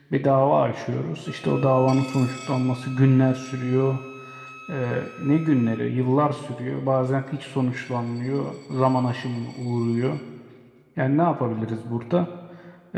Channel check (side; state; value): both; identical; correlation 1.00